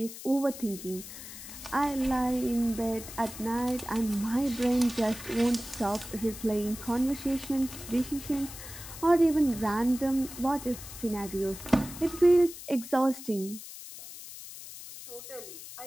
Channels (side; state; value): left; noise; hiss, 13 dB below the sound